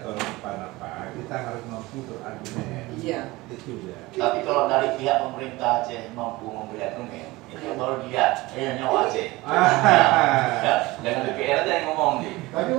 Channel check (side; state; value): left; quieter; 20.7 dB